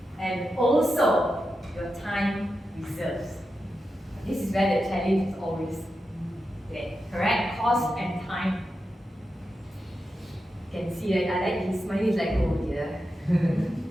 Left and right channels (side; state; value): both; normal; correlation 0.89